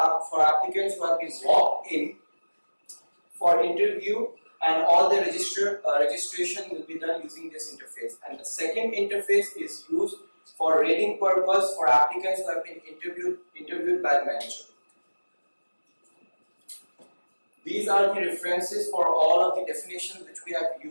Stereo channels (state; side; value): inverted; both; correlation -1.00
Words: applicants who have been logged in for interview, and all the registration will be done using this interface. And the second interface is used for rating purpose for applicants who have been interviewed by the manager. These are the references for all of the definitions which we have